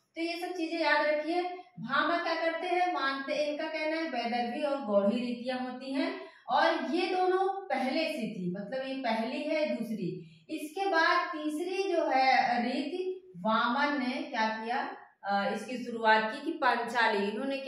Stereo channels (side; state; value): both; identical; correlation 1.00